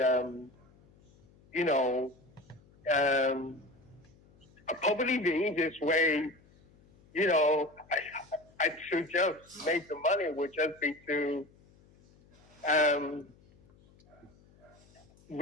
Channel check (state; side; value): noise; left; hum, 28 dB below the sound